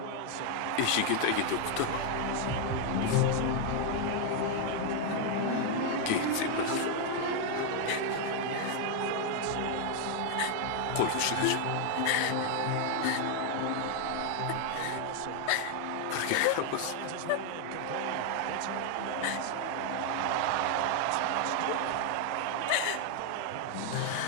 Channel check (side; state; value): both; different; correlation 0.00